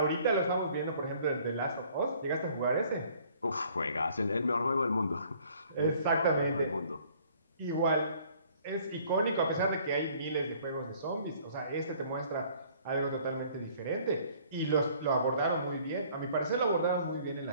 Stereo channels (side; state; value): both; inverted; correlation -0.57